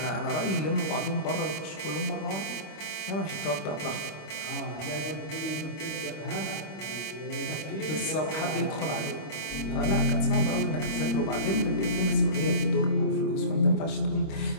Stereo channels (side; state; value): right; late; 26 ms